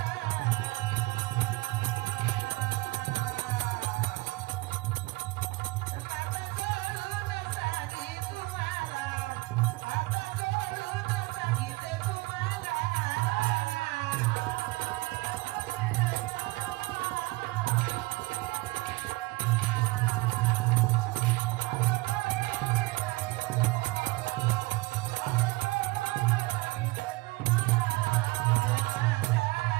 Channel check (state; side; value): quieter; left; 22.5 dB